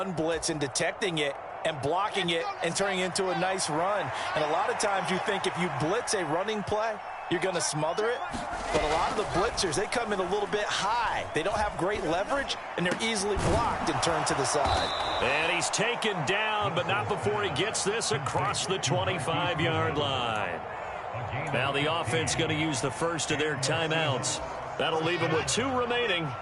blitz and detecting it and blocking it and turning it into a nice run. And a lot of times you think if you blitz a running play, you're going to smother it. But a lot of the blitzers, they come in a little bit high. They don't have great leverage, and they're easily blocked and turned to the side. And he's taken down, but not before he gets this across the 25-yard line. Now the offense going to use the first of their timeouts. That'll leave them with 2 remaining.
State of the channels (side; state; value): both; identical; correlation 1.00